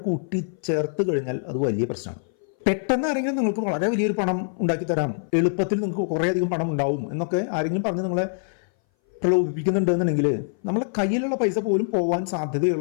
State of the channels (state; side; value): silent; right; 59 dB below the other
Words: കൂട്ടിച്ചേർത്ത് കഴിഞ്ഞാൽ അത് വലിയ പ്രശ്നമാണ്. പെട്ടെന്ന് ആരെങ്കിലും നിങ്ങൾക്ക് വളരെ വലിയൊരു പണം ഉണ്ടാക്കി തരാം, എളുപ്പത്തിൽ നിങ്ങൾക്ക് കുറേയധികം പണം ഉണ്ടാവും എന്നൊക്കെ ആരെങ്കിലും പറഞ്ഞ് നിങ്ങളെ പ്രലോഭിപ്പിക്കുന്നുണ്ടെന്നുണ്ടെങ്കിൽ നമ്മളെ കയ്യിലുള്ള പൈസ പോലും പോകാൻ